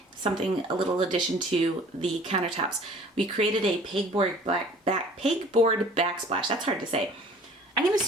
a little addition to the countertops. We created a pegboard backsplash. That's hard to say. I'm going to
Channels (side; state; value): both; normal; correlation 0.49